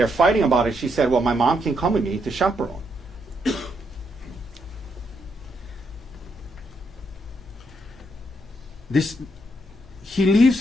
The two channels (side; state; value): both; normal; correlation 0.77